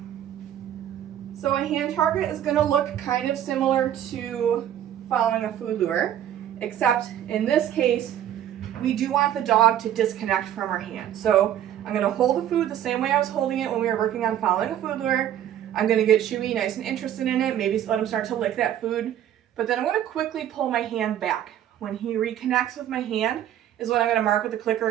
So a hand target is going to look kind of similar to following a food lure, except in this case, we do want the dog to disconnect from our hand. So I'm going to hold the food the same way I was holding it when we were working on following a food lure. I'm going to get Chewy nice and interested in it, maybe let him start to lick that food. But then I'm going to quickly pull my hand back. When he reconnects with my hand is when I'm going to mark with the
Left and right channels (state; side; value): quieter; left; 11.0 dB